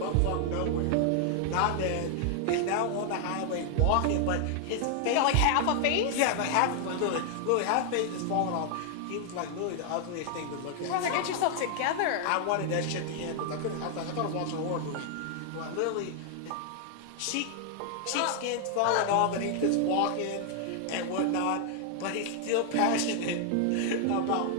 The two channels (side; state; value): both; different; correlation 0.00